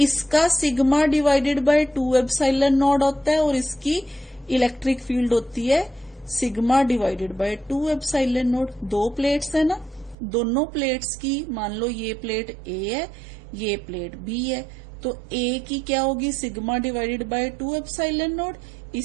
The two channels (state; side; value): drops out; left; at 10.2 s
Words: sigma divided by 2 epsilon node होता है, और इसकी इलेक्ट्रिक फील्ड होती है sigma divided by 2 epsilon node. 2 plates है ना, दोनों प्लेट्स की, मान लो ये प्लेट A है, ये प्लेट B है, तो A की क्या होगी, sigma divided by 2 epsilon node.